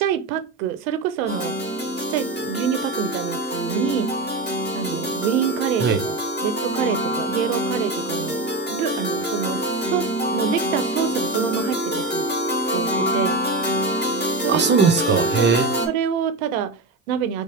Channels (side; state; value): left; quieter; 3.3 dB